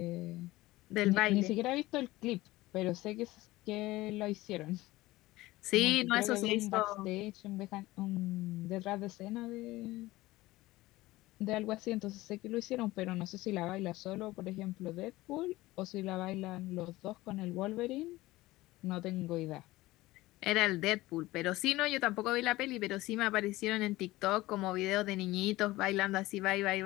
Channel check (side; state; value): right; quieter; 18.5 dB